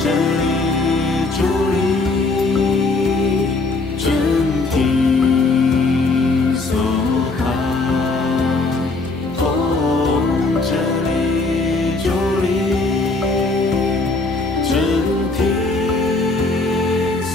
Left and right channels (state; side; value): quieter; right; 3.4 dB